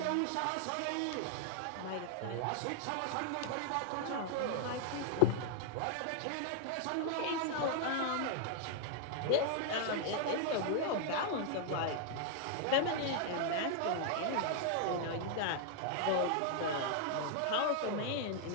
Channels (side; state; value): both; different; correlation 0.00